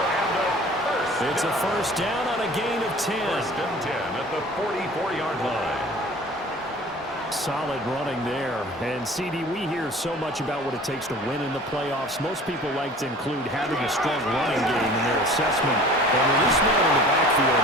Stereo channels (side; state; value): both; normal; correlation 0.45